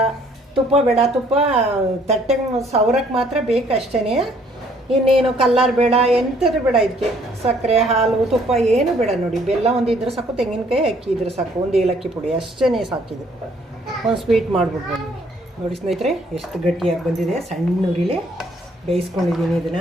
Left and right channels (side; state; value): both; normal; correlation 0.63